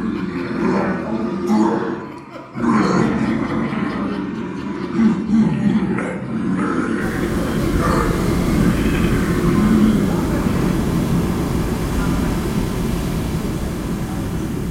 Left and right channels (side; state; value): both; identical; correlation 1.00